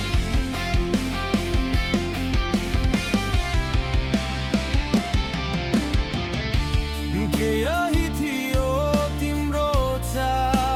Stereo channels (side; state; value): both; identical; correlation 1.00